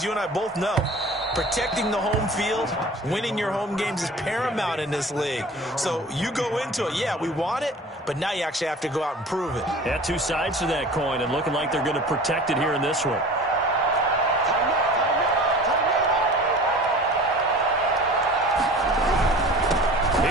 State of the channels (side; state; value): both; normal; correlation 0.41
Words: you and I both know protecting the home field, winning your home games is paramount in this league. So you go into it, yeah, we want it, but now you actually have to go out and prove it. Yeah, 2 sides to that coin, and looking like they're going to protect it here in this one.